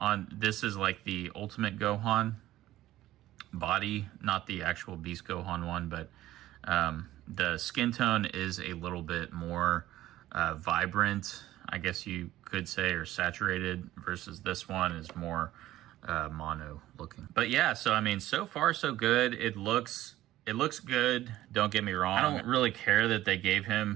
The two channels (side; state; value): left; quieter; 14.9 dB